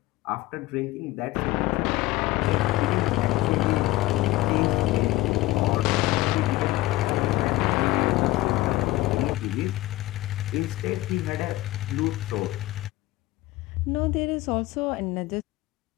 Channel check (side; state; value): right; quieter; 17.7 dB